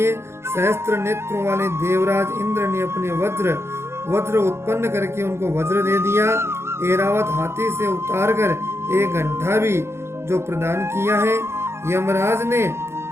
सहस्त्र नेत्रों वाले देवराज इंद्र ने अपने वज्र उत्पन्न करके उनको वज्र दे दिया। ऐरावत हाथी से उतारकर एक घंटा भी जो प्रदान किया है। यमराज ने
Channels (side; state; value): left; late; 0.12 ms